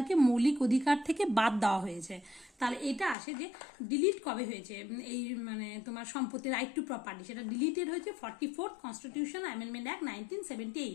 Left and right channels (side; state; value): right; drops out; at 3.2 s